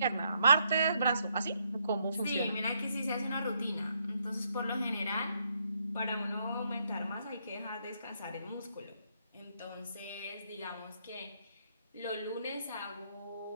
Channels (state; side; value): inverted; both; correlation -0.75